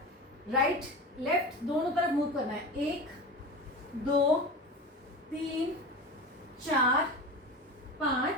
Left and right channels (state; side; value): normal; both; correlation 0.29